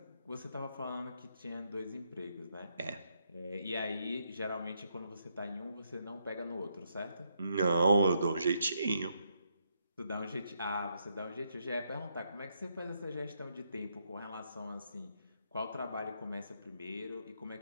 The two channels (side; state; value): both; inverted; correlation -0.77